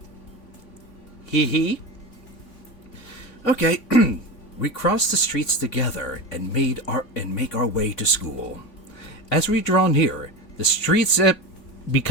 Hee. Okay, we crossed the streets together and make our way to school. As we draw near, the streets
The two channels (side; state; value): right; late; 3.5 ms